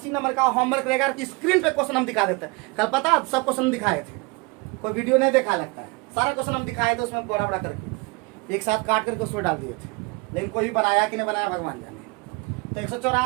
नंबर का होमवर्क रहेगा कि स्क्रीन पे क्वेश्चन हम दिखा देते हैं। कल पता सब क्वेश्चन दिखाए थे, कोई वीडियो नहीं देखा लगता है, सारा क्वेश्चन हम दिखाए थे उसमें बड़ा बड़ा करके एक साथ काट करके उसमें डाल दिए थे, लेकिन कोई बनाया कि नहीं बनाया भगवान जाने। तो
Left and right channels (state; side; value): quieter; left; 27.6 dB